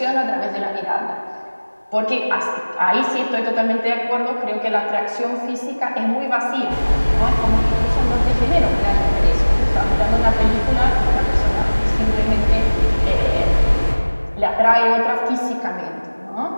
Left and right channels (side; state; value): both; inverted; correlation -1.00